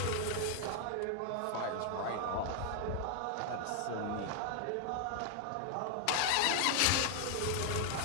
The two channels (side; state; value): both; different; correlation 0.00